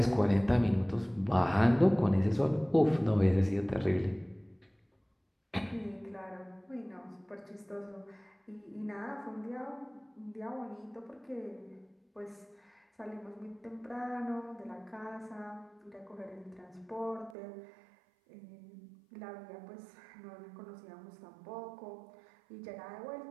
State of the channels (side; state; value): left; drops out; at 17.4 s